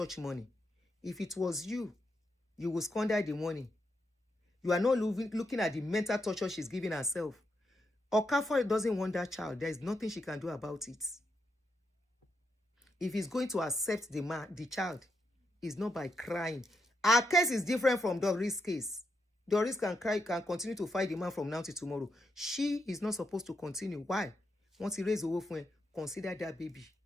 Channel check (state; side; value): normal; both; correlation 0.82